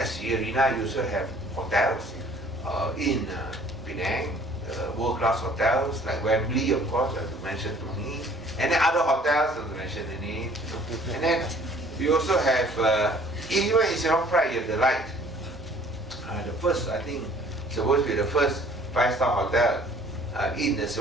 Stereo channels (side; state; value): both; normal; correlation 0.55